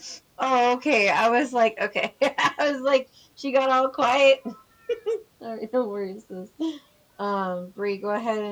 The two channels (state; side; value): identical; both; correlation 1.00